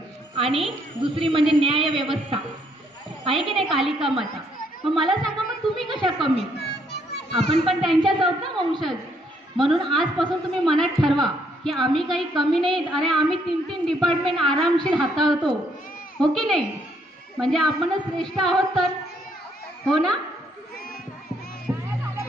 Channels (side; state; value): both; normal; correlation 0.70